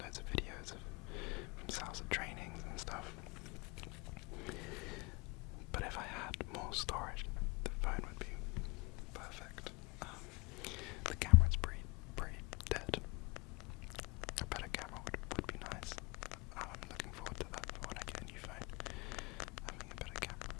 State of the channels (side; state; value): right; quieter; 26.1 dB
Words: loads of videos from Salsa trainings and stuff. But if I had more storage, the phone would be perfect. The camera's pretty dead. A better camera would be nice. I'm looking forward to that for when I get a new phone, having a better camera.